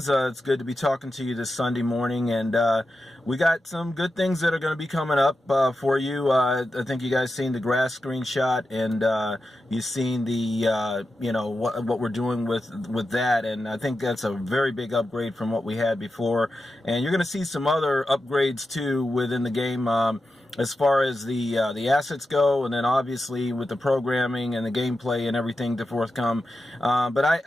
it's good to be talking to you this Sunday morning, and we got some good things that are going to be coming up for you. I think you guys seen the grass screenshot, and you've seen the what we're doing with that, and I think that's a very big upgrade from what we had before. And you're going to see some other upgrades too within the game. As far as the assets go, and then obviously with the programming and the gameplay and everything to forthcome. But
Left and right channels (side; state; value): both; normal; correlation 0.90